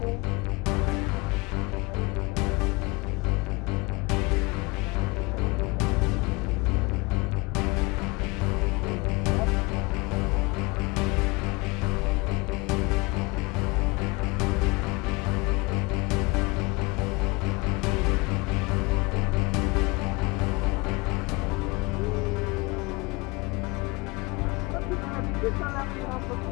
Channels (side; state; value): right; quieter; 25.8 dB